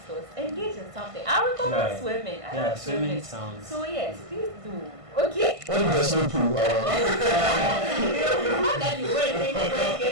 engage in something. I recommend swimming. I like swimming sounds. So yes, please do. Okay. What if there's no pool? That you wait to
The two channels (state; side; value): late; left; 1.5 ms